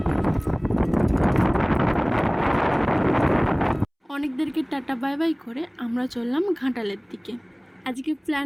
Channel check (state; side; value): identical; both; correlation 1.00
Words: অনেকদেরকে টাটা বাই বাই করে আমরা চললাম ঘাটালের দিকে। আজকে প্ল্যান